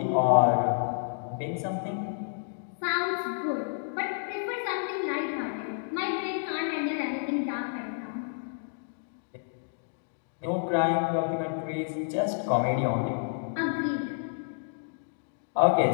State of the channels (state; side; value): silent; right; digital silence